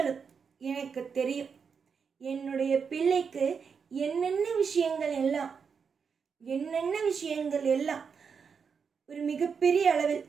எனக்கு தெரியும். என்னுடைய பிள்ளைக்கு என்னென்ன விஷயங்கள் எல்லாம் ஒரு மிகப்பெரிய அளவில்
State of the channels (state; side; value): quieter; left; 6.1 dB